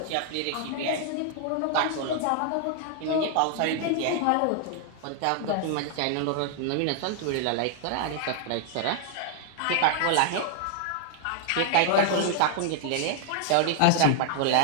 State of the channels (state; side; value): different; both; correlation 0.00